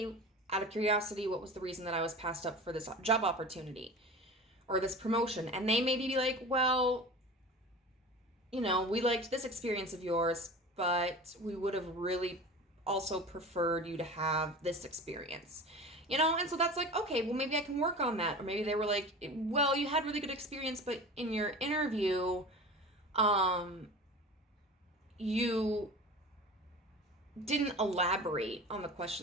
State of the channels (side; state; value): both; normal; correlation 0.35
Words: out of curiosity, what was the reason that I was passed up for this job opportunity or this promotion? And they maybe be like, well, we liked this experience of yours, but we would have really also preferred you to have this experience, and so that's like, okay, well, maybe I can work on that. Or maybe they were like, well, you had really good experience, but in your interview, you didn't elaborate on the